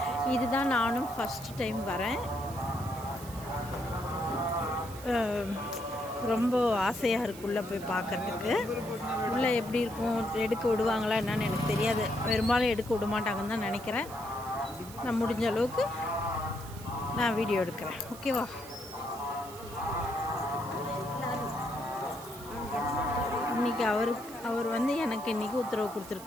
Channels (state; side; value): noise; right; hiss, 16 dB below the sound